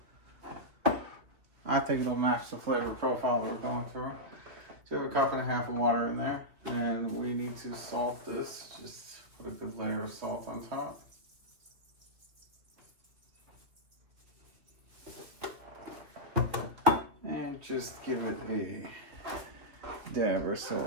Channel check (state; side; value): late; left; 2.6 ms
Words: I think it'll match the flavor profile that we're going through. So we have 1.5 cups of water in there, and we need to salt this. Just put a good layer of salt on top. And just give it a dab or so